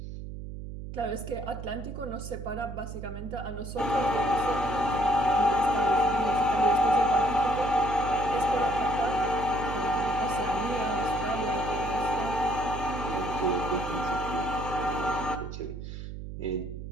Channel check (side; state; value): right; noise; hum, 9 dB below the sound